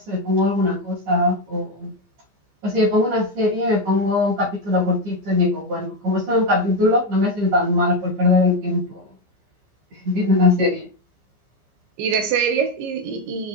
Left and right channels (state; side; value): late; left; 15 ms